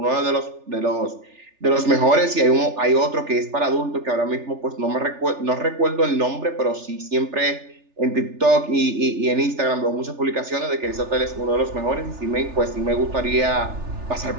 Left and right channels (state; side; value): late; left; 3.4 ms